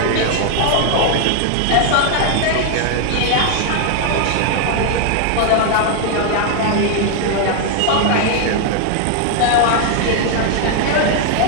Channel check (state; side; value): different; both; correlation 0.00